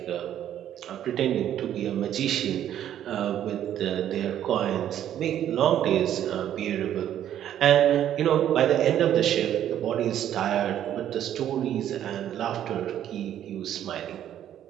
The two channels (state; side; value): quieter; left; 10.9 dB